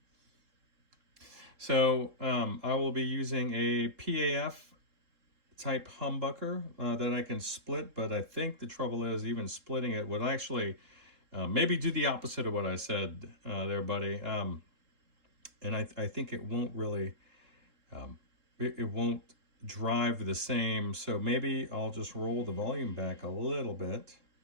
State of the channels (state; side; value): late; left; 3.7 ms